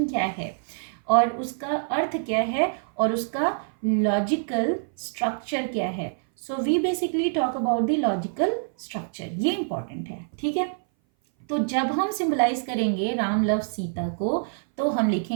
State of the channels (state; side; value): silent; left; 59 dB below the other